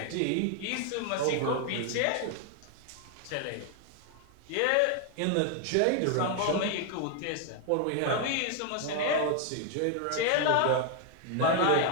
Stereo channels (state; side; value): different; both; correlation 0.00